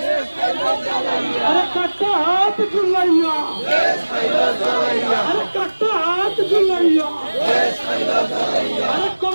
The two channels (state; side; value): inverted; both; correlation -1.00